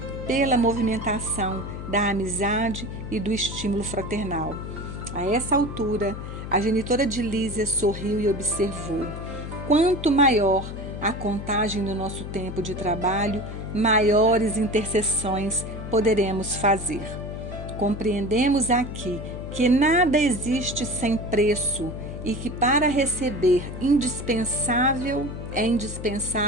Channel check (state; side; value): noise; left; hum, 8 dB below the sound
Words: pela movimentação da amizade e do estímulo fraternal. A essa altura, a genitora de Lísia sorriu e observou: quanto maior a contagem do nosso tempo de trabalho, maiores intercessões poderemos fazer. Compreendemos aqui que nada existe sem preço e que para receber é